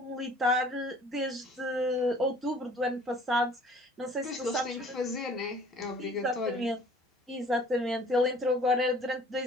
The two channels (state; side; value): normal; both; correlation 0.52